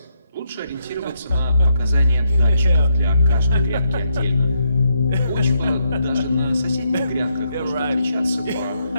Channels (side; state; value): both; inverted; correlation -0.78